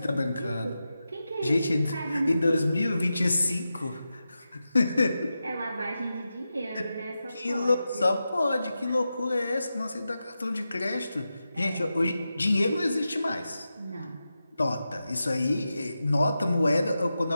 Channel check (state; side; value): inverted; both; correlation -0.91